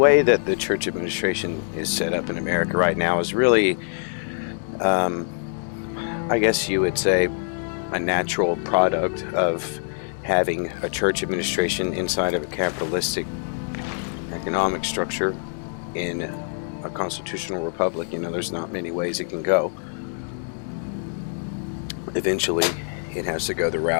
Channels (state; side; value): silent; right; digital silence